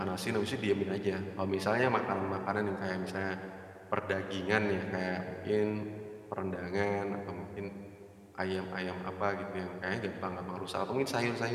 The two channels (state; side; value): identical; both; correlation 1.00